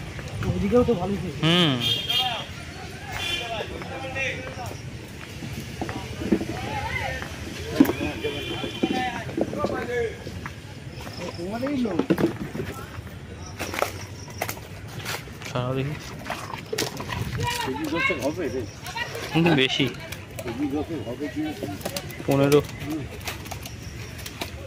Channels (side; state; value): both; identical; correlation 1.00